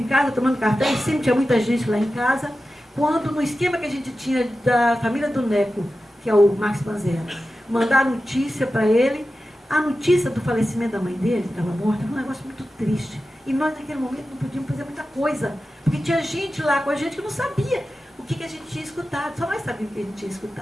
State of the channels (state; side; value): normal; both; correlation 0.93